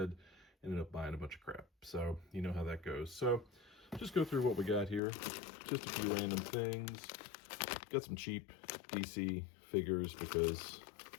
ended up buying a bunch of crap. So you know how that goes. So just go through what we got here. Just a few random things. Got some cheap DC figures because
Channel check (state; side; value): drops out; right; at 5.0 s